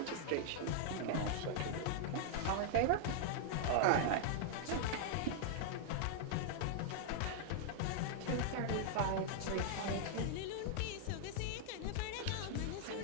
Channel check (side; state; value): both; different; correlation -0.01